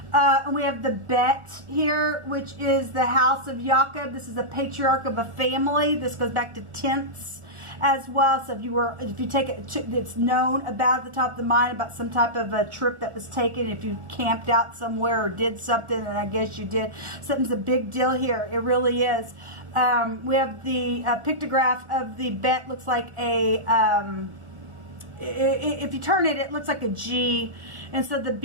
And we have the Bet here, which is the house of Jacob. This is the patriarch of a family. This goes back to tenths as well. So if you take it, it's known about at the top of the mind about some type of a trip that was taken. If you camped out somewhere or did something, and I guess you did, something's a big deal here. It really is. We have the pictograph of the Bet. Looks like a if you turn it, it looks like a G. And so the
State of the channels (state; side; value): late; left; 1.4 ms